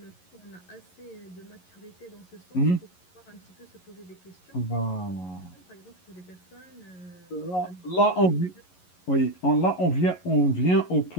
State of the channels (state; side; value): late; right; 11 ms